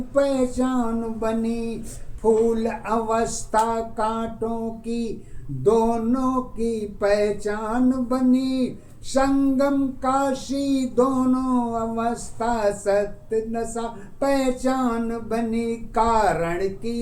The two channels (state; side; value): identical; both; correlation 1.00